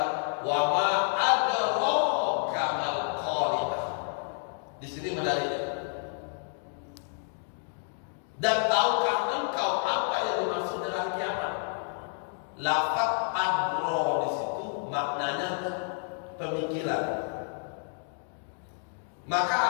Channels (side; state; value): right; silent; 58 dB below the other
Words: Wa ma adraka mal-Qari'ah. Di sini menariknya. Dan tahukah engkau apa yang dimaksud dengan kiamat? Lafaz adro di situ maknanya pemikiran. Maka